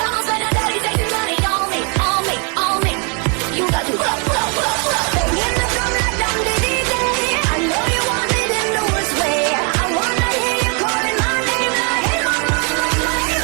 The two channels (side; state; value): left; quieter; 36.4 dB